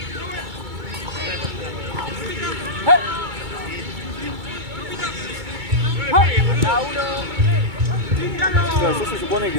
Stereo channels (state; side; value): late; left; 2.2 ms